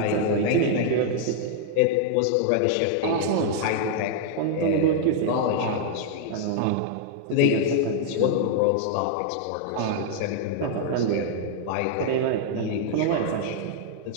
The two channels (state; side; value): different; both; correlation -0.01